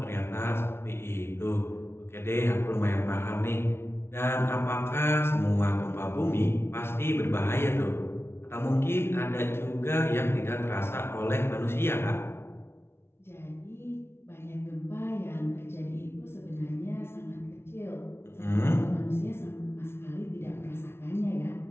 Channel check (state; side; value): late; right; 0.12 ms